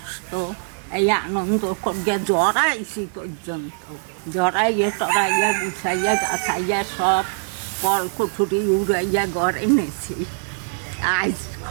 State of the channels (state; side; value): silent; left; 64 dB below the other